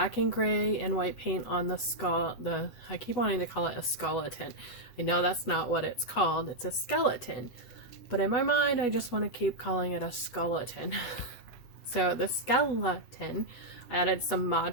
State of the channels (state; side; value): late; right; 8.2 ms